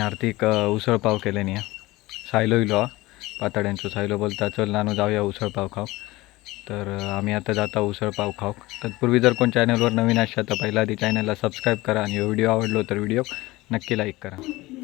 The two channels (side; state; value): right; quieter; 19.9 dB